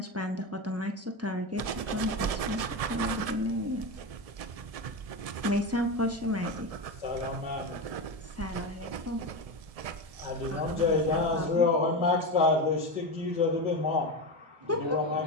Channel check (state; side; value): late; left; 1.7 ms